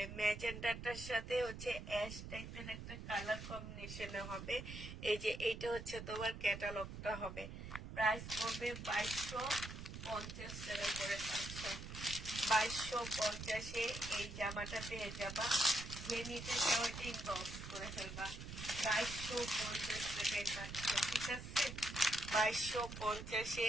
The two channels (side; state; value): right; noise; rumble, 9 dB below the sound